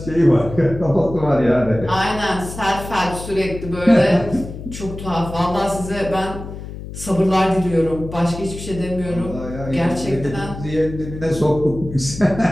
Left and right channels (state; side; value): noise; left; hum, 11 dB below the sound